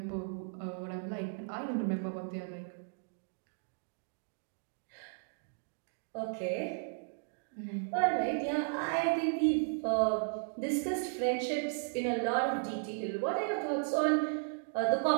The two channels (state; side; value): silent; left; digital silence